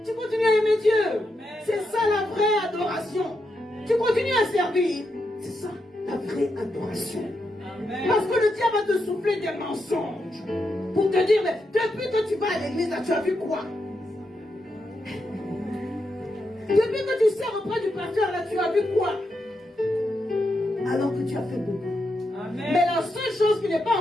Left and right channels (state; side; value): normal; both; correlation 0.84